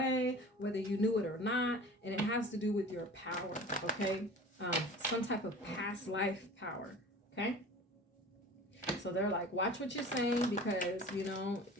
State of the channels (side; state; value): both; normal; correlation 0.40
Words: whether you knew it or not, and it has to do with your power. Okay, some type of past life power. Okay, so they're like, watch what you're saying, because you know